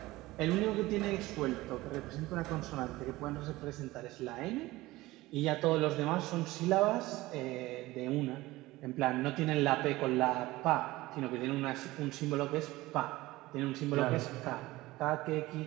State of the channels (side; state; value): left; quieter; 18.8 dB